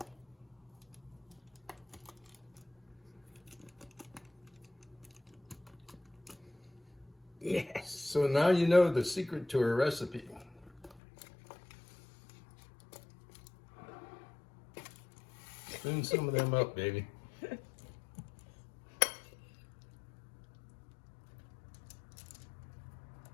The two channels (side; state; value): right; drops out; at 11.0 s